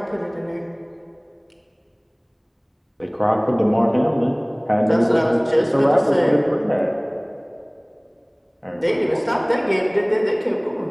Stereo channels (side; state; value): both; identical; correlation 1.00